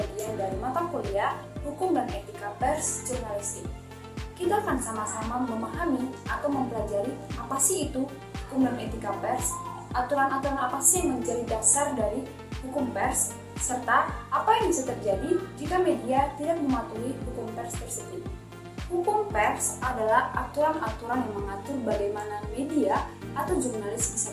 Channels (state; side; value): identical; both; correlation 1.00